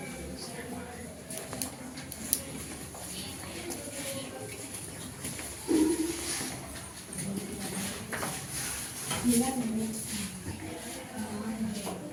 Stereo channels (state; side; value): identical; both; correlation 1.00